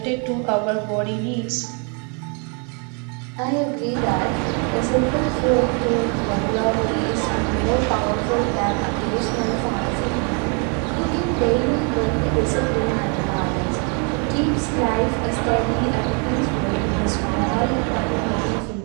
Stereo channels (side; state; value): left; quieter; 37.2 dB